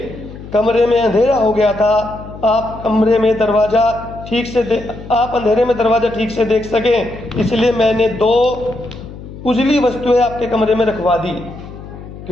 कमरे में अंधेरा हो गया था। आप अंधेरे में दरवाजा ठीक से देख सकें, इसलिए मैंने दो उजली वस्तुएं आपके कमरे में रखवा दी।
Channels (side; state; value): left; noise; hum, 14 dB below the sound